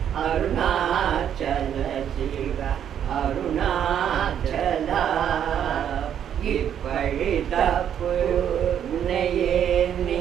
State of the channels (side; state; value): left; quieter; 9.3 dB